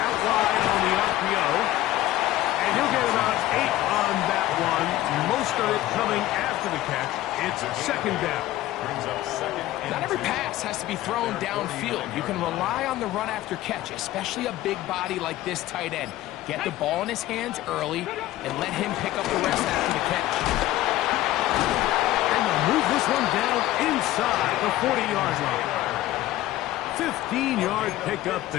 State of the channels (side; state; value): right; quieter; 15.4 dB